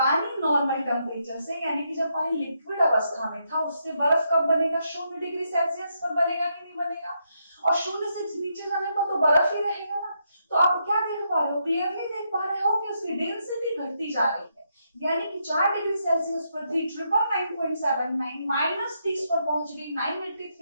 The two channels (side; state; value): both; inverted; correlation -0.79